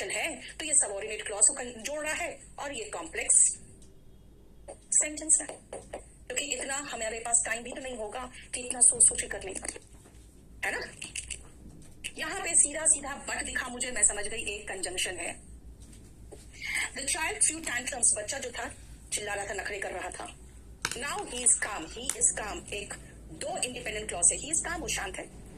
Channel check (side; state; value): both; identical; correlation 1.00